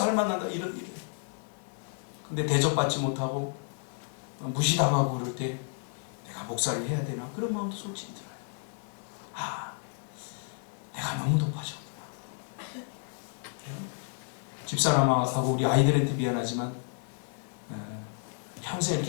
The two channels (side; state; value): right; silent; 57 dB below the other